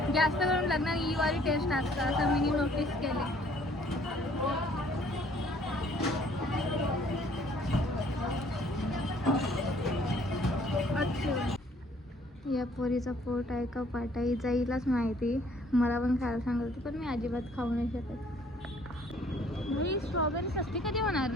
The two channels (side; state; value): both; normal; correlation 0.60